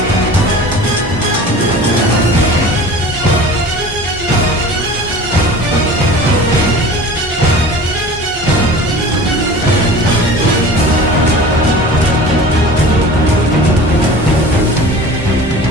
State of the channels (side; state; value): both; normal; correlation 0.39